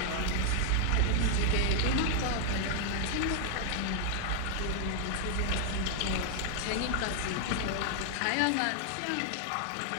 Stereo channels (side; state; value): both; different; correlation 0.00